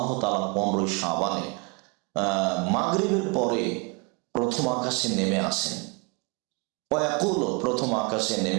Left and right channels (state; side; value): quieter; left; 30.4 dB